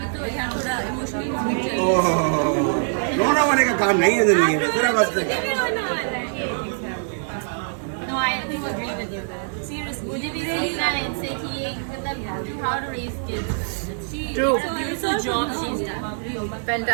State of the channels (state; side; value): silent; left; digital silence